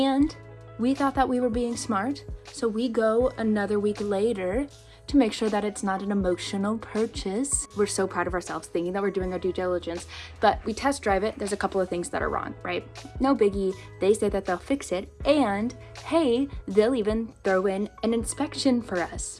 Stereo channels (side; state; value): both; identical; correlation 1.00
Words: we thought that we were being smart, so we go another week later to make sure that it's not an emotional purchase. We're so proud of ourselves thinking that we're doing our due diligence, but we test drive it. There's a couple of things that are wrong, right? No biggie. They say that they'll fix it, and hey, they'll even throw in an inspection for us